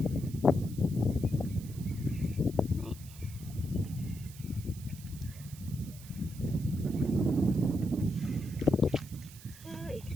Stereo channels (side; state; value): right; noise; hiss, 18 dB below the sound